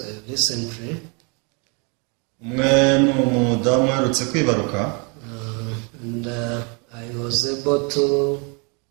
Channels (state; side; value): quieter; left; 33.8 dB